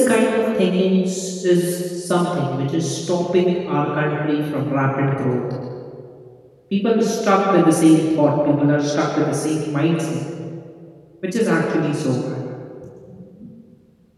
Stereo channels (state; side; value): identical; both; correlation 1.00